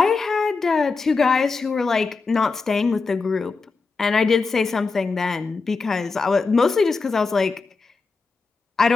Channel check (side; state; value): right; quieter; 4.3 dB